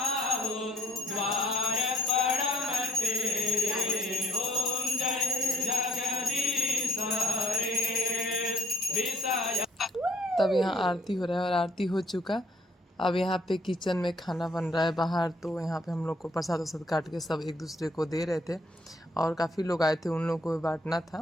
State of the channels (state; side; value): normal; both; correlation 0.67